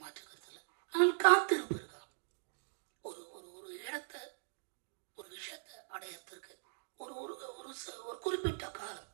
மாற்று கருத்து இல்லை. ஆனால் காத்திருப்பு இருக்கா? ஒரு ஒரு இடத்த, ஒரு விஷயத்தை அடையறதுக்கு ஒரு ஒரு ஒரு குறிப்பிட்ட காலம்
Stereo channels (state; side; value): silent; left; digital silence